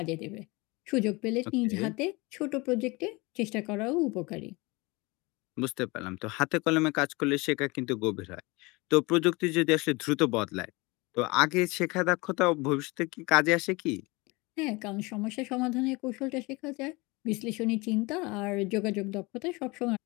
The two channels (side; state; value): right; quieter; 24.8 dB